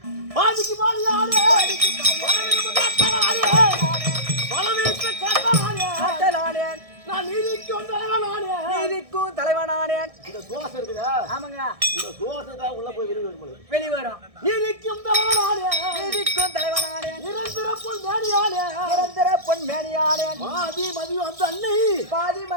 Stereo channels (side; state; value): left; late; 1.6 ms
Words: பாதிக்கு பாதி யாரு? பாதிக்கு பாதி யாரு? பலவீட்டு காட்டலானேன். நான் நீதிக்கும் தலைவனானே. நீதிக்கும் தலைவனானேன். இந்த தோசை இருக்குதா? ஆமாங்க. இந்த தோசை தான் உள்ள போய் வெளிவரும். நீதிக்கும் தலைவனானே. நீதிக்கும் தலைவனானே. நிரந்தர பொன் மேனியானே. நிரந்தர பொன் மேனியானே. பாதி மதி வந்த அன்னை. பாதி